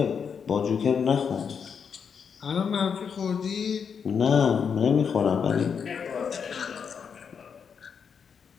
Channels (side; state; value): right; quieter; 6.7 dB